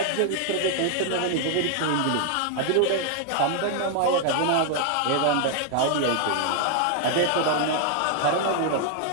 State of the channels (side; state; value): both; different; correlation 0.00